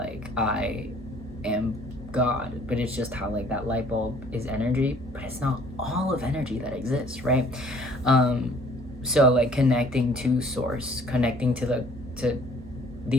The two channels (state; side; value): normal; both; correlation 0.57